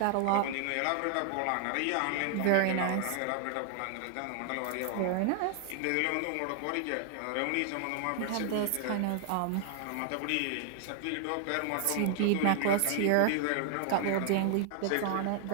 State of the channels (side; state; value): both; different; correlation 0.00